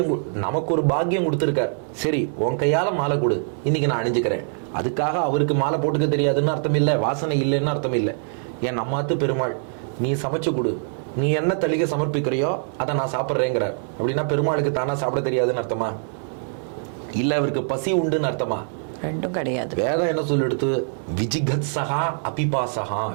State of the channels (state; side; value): silent; left; 61 dB below the other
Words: நமக்கு ஒரு பாக்கியம் கொடுத்திருக்கார். சரி, உன் கையால மாலை கொடு, இன்னைக்கு நான் அணிஞ்சுக்கிறேன். அதுக்காக அவருக்கு மாலை போட்டுக்க தெரியாதுன்னு அர்த்தம் இல்லை, வாசனை இல்லைன்னு அர்த்தம் இல்லை. ஏன் நம்மாத்து பெருமாள், நீ சமைச்சு கொடு, நீ என்ன தளிகை சமர்ப்பிக்கிறியோ அதை நான் சாப்பிட்றேங்கிறார். அப்படின்னா பெருமாளுக்கு தானா சாப்பிட தெரியாதுன்னு அர்த்தமா? இல்ல அவருக்கு பசி உண்டுன்னு அர்த்தமா? ரெண்டும் கிடையாது. வேதம் என்ன சொல்லிடுத்து? விஜிகத் சகா அபிபாசகா.